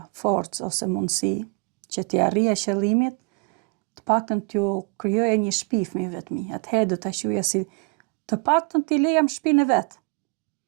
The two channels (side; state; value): left; quieter; 34.1 dB